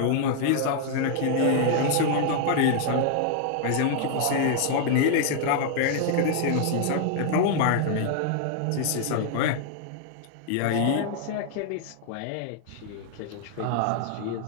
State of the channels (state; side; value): different; both; correlation -0.01